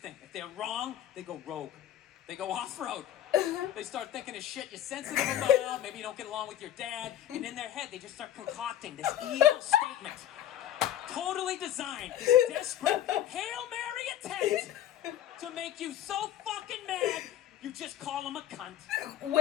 If they're wrong, they go rogue. They go off-road. They start thinking of shit you're sensitive about. Maybe you don't get along with your dad. And in their head, they just start concocting this evil statement. Totally designed. This desperate Hail Mary attempt to make you so fucking mad, you just call them a cunt.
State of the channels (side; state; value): right; quieter; 11.7 dB